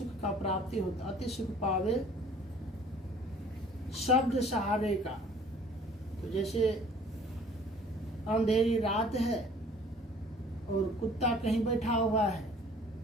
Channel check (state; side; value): normal; both; correlation 0.52